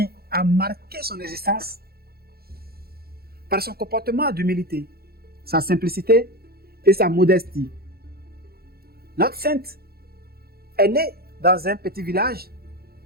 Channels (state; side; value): late; left; 0.45 ms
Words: a marqué son existence par son comportement d'humilité, sa simplicité et sa modestie. Notre sainte est née dans un petit village